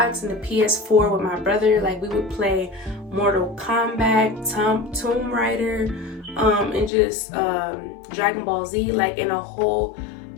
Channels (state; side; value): drops out; right; at 6.9 s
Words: and the PS4 with my brother. Like, we would play Mortal Kombat, Tomb Raider, and just Dragon Ball Z, like in a whole